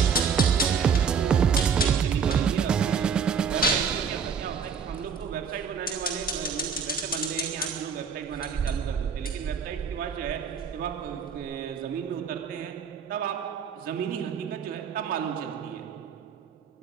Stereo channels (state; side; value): quieter; left; 6.3 dB